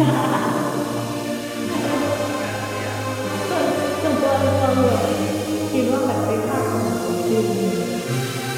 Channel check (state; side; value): identical; both; correlation 1.00